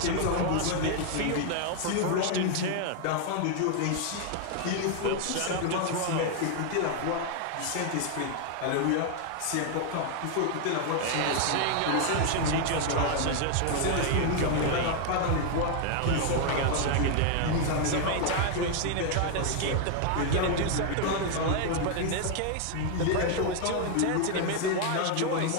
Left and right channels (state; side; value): different; both; correlation 0.00